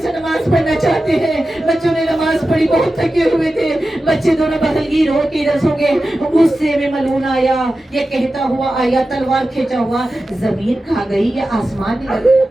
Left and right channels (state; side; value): normal; both; correlation 0.93